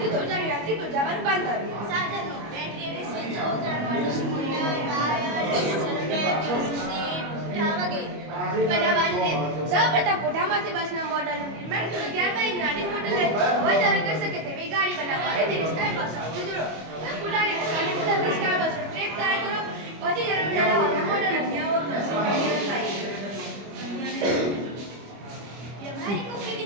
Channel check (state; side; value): late; left; 25 ms